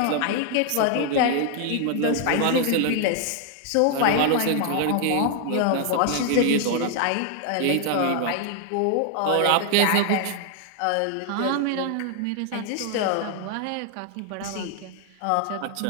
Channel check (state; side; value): different; both; correlation 0.00